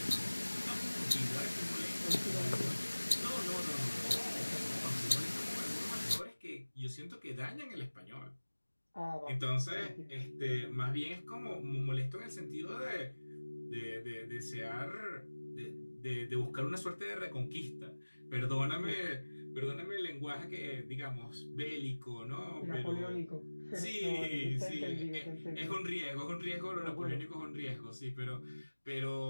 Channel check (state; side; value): inverted; both; correlation -1.00